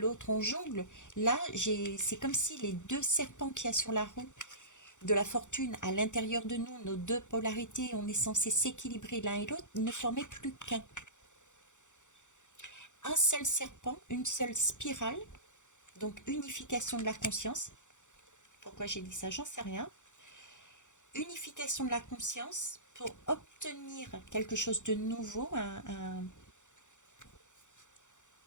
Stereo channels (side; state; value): right; late; 0.85 ms